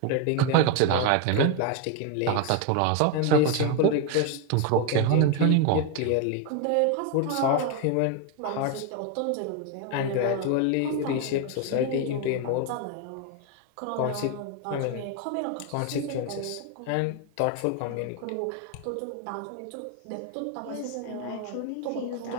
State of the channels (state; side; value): different; both; correlation 0.02